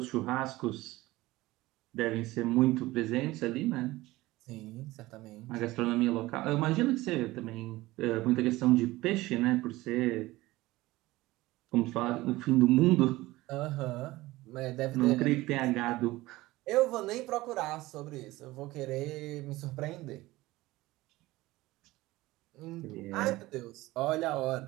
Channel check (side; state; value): left; quieter; 18.8 dB